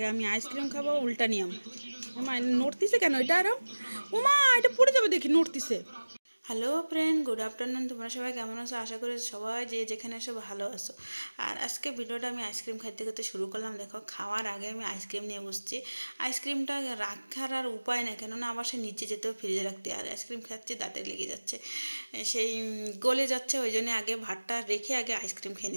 আমি আইসক্রিম খাবো, উল্টা নিয়ম। ওমা নড়তিছে কেন এটা? আরো ওমা এটা পড়ে যাবে দেখি, নড়তিছে। Hello friend, good afternoon. তোমরা সবাই কেমন আছো? আশা করি সবাই যে যেখানে আছো ভালো আছো। আর আজকে ভিডিওটা আমি আইসক্রিম খাইতে খাইতে শুরু করলাম। দেখো খাওয়ার আগে আমি আইসক্রিম নিয়ে বসছি। আইসক্রিমটা রাখার আর উপায় নেই, কেননা আবার সে নিচে যেতেও ফ্রিজে রাখতে। আর আইসক্রিম খাচ্ছি, দাঁতে লেগে যাচ্ছে, সেই গলে যাচ্ছে। ওই জন্য আগে ভাতটা রেখে আগে আইসক্রিম খেয়ে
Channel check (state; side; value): inverted; both; correlation -1.00